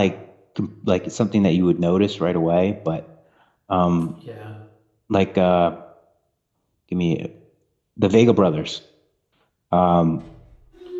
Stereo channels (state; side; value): identical; both; correlation 1.00